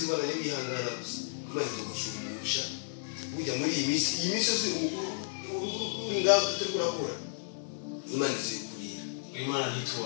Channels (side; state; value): right; silent; 56 dB below the other